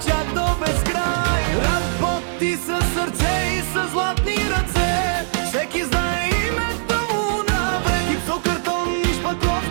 чак до безкрай. Работи със сърце и със златни ръце, всеки знае името му навред. Гипсо, картон и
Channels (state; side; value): silent; left; digital silence